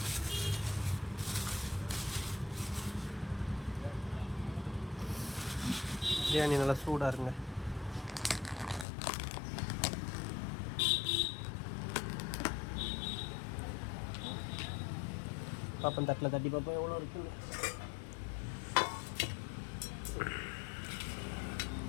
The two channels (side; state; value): right; drops out; at 8.8 s